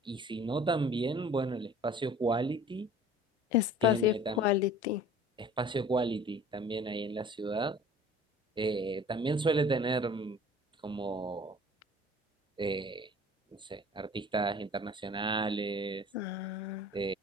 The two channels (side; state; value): both; normal; correlation 0.47